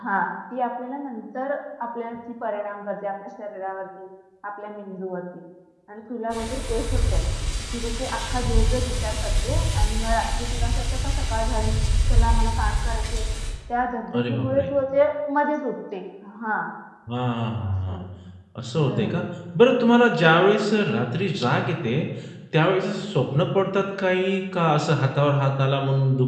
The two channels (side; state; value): both; identical; correlation 1.00